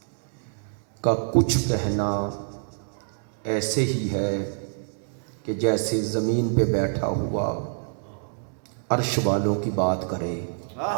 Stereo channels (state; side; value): silent; left; digital silence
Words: کا کچھ کہنا ایسے ہی ہے کہ جیسے زمین پہ بیٹھا ہوا عرش والوں کی بات کرے۔